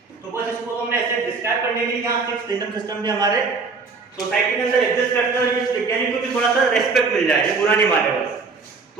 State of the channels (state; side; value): quieter; left; 4.5 dB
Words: तो बस इसको हमने ऐसे डिस्क्राइब करने के लिए यहाँ 6 किंगडम सिस्टम भी हमारे सोसाइटी के अंदर एग्जिस्ट करते हैं। इस वैज्ञानिक को भी थोड़ा सा रेस्पेक्ट मिल जाए, ये बुरा नहीं माने बस।